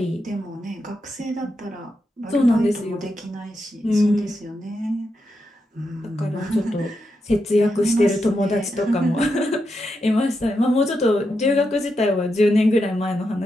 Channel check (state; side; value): normal; both; correlation 0.85